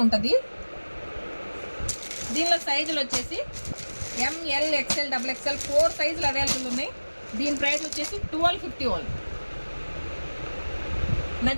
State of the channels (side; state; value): both; inverted; correlation -1.00